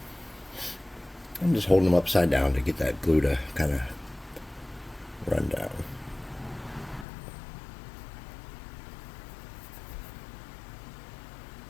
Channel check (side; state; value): right; drops out; at 7.1 s